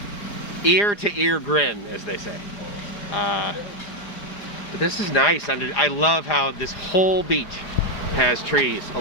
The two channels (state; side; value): late; right; 4.9 ms